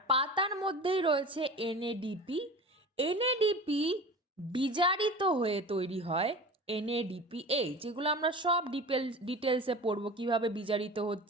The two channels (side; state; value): both; normal; correlation 0.35